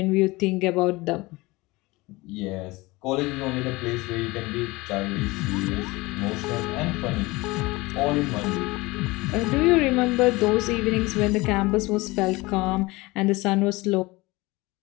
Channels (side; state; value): right; quieter; 22.2 dB